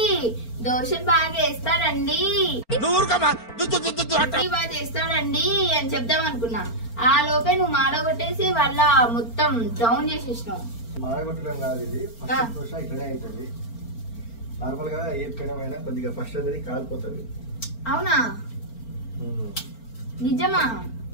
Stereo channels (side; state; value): right; late; 4.4 ms